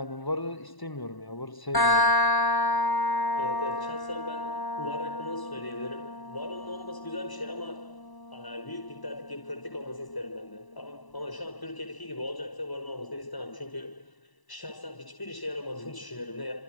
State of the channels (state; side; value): late; right; 1.0 ms